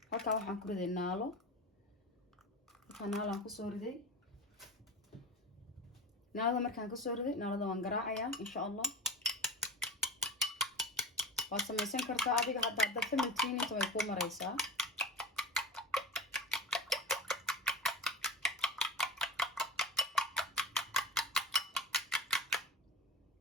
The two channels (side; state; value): both; normal; correlation 0.29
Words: halka waxaan ku riday naalo aan ku soo riday naalada markaan ka soo riday naalada waan garaacayaa insha Allah waa samaysan kartaa adiga hadda familkiina inta way ku maraysaa